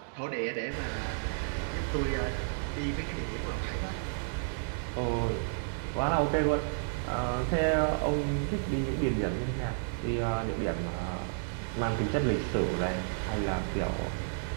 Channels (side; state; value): left; silent; digital silence